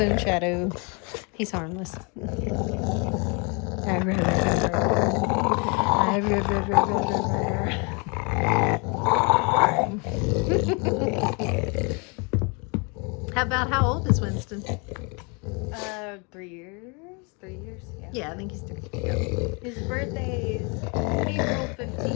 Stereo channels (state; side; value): quieter; right; 32.8 dB